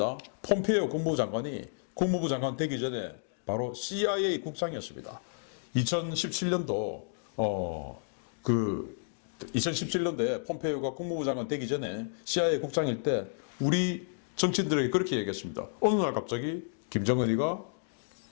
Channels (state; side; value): silent; right; digital silence